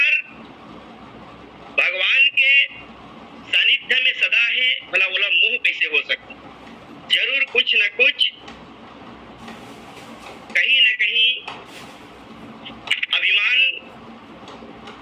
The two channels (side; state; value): both; identical; correlation 1.00